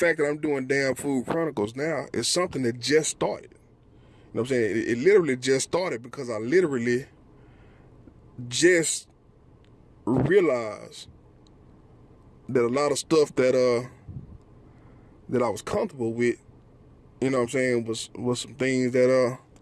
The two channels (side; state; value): both; identical; correlation 1.00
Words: that I'm doing Damn Food Chronicles now is something that just started. You know what I'm saying? It literally just started because I literally just realized that a lot of stuff that I was comfortable with, you know what I'm saying, was some things that